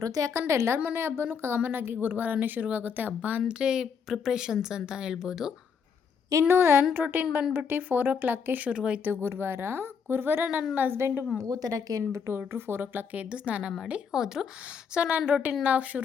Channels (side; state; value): right; quieter; 6.5 dB